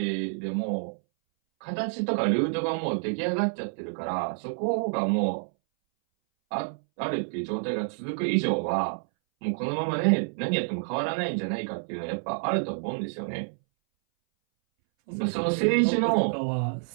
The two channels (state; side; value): silent; left; 59 dB below the other